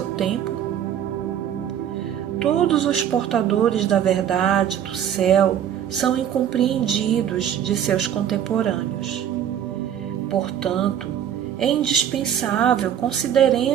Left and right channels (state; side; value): quieter; left; 9.8 dB